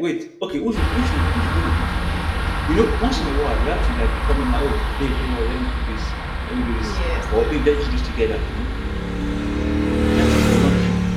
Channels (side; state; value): both; identical; correlation 1.00